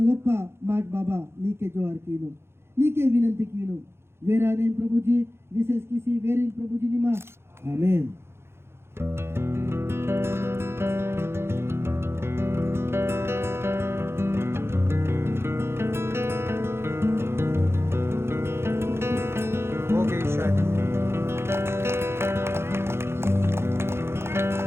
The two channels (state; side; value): late; left; 0.12 ms